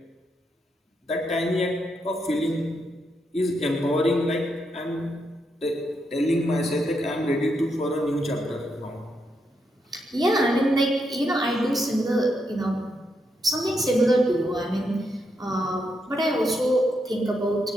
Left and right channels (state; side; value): normal; both; correlation 0.81